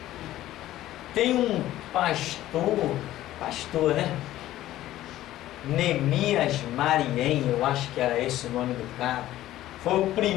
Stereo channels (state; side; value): quieter; right; 14.4 dB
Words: Tem um pastor, né? Neemias Mariem, eu acho que era esse o nome do cara. Foi o